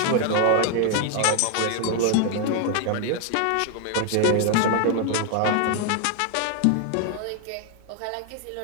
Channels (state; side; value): different; both; correlation 0.00